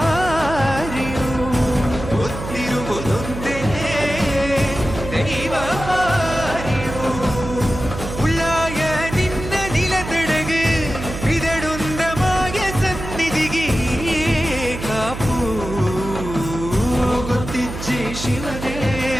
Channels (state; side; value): noise; right; hum, 8 dB below the sound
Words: ಗೊತ್ತಿರುವುದೊಂದೇ ದೈವ ಬಾರಿಯು. ಉಳ್ಳಾಯ ನಿನ್ನ ನಿಲತಡகு ಇದಡುಂದ ಮಾಯ ಸನ್ನಿಧಿಗೆ ಕಾಪು, ಗೊತ್ತಿಚ್ಚೆ ಶಿವನೇ